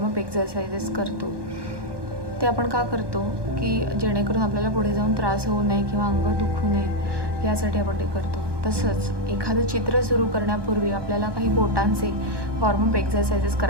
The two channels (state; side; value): late; left; 1.2 ms